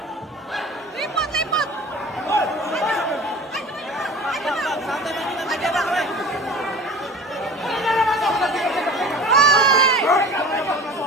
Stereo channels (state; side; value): normal; both; correlation 0.40